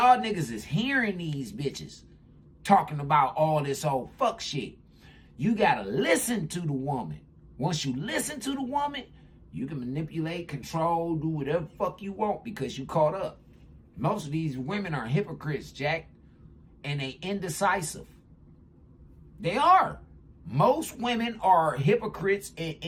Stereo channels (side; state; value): both; identical; correlation 1.00